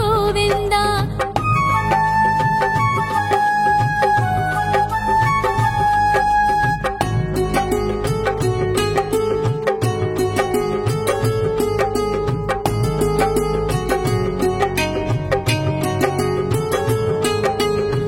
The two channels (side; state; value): both; identical; correlation 1.00